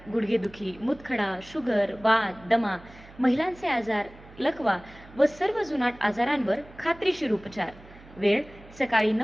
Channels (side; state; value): right; noise; hum, 21 dB below the sound